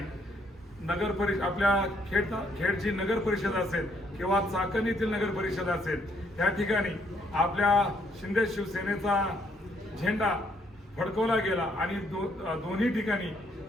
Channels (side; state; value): both; normal; correlation 0.70